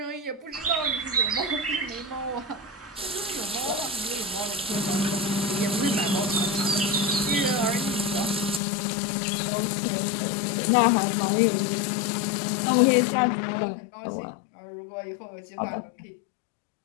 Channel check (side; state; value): right; drops out; at 8.6 s